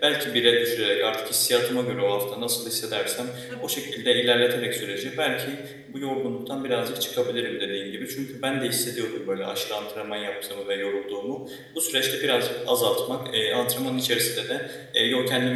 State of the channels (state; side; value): identical; both; correlation 1.00